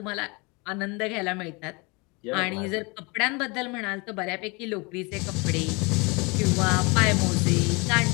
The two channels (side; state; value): right; quieter; 28.2 dB